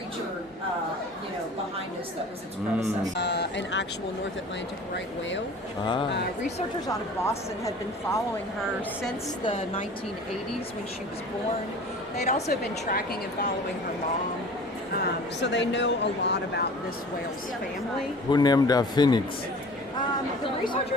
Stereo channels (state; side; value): normal; both; correlation 0.43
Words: behind us that was its predecessor. An actual North Atlantic right whale. Researchers out of Boston had been following her since the 1980s when she was born. They'd also been tracking and following her mom. So they know a lot about this whale's family. Who named her Phoenix? The